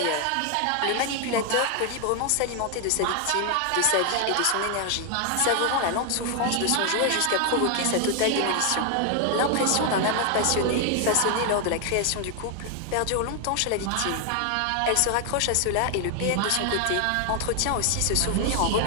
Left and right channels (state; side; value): different; both; correlation 0.00